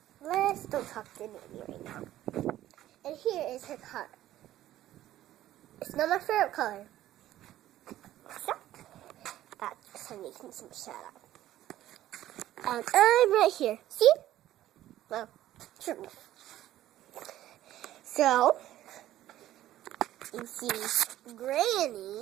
Let's don't talk to Granny right now. And here is her car. It's not my favorite color. So, that's making some shout out. And I'm right here. See? Well, sure. So, you see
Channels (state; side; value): quieter; left; 13.7 dB